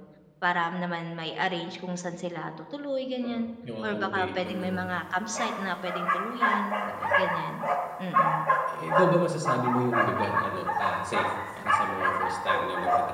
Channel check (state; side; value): identical; both; correlation 1.00